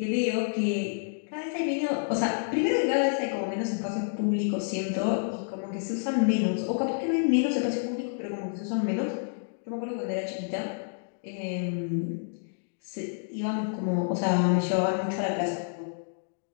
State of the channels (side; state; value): right; silent; digital silence